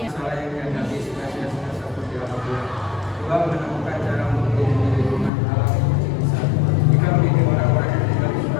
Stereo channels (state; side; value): drops out; right; at 5.3 s